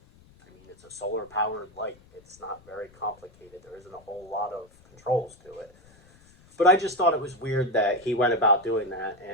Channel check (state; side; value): noise; left; rumble, 27 dB below the sound